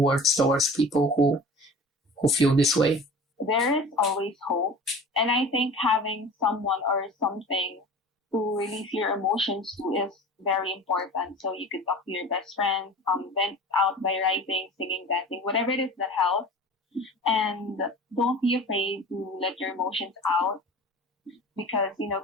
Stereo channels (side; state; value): both; normal; correlation 0.39